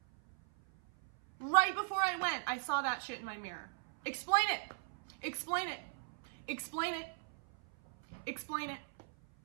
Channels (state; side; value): silent; left; 52 dB below the other